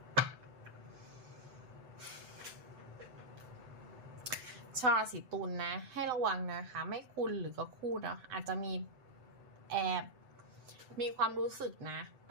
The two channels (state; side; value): late; left; 7.9 ms